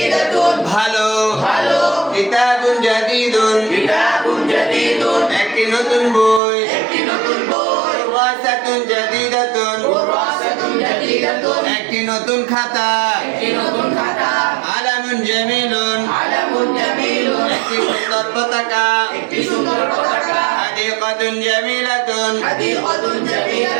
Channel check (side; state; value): left; drops out; at 6.4 s